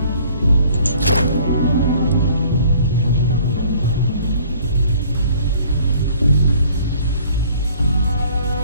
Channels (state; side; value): inverted; both; correlation -0.55